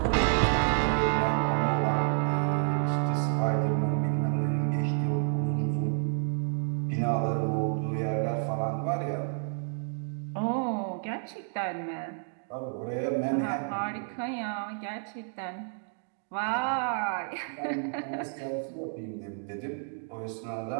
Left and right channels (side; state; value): left; silent; digital silence